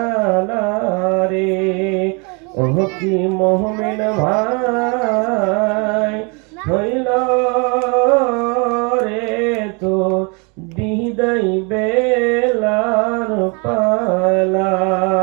রে ওহ কি মুমিন ভাই হইল রে তো বিদায় বেলার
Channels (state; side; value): quieter; left; 32.5 dB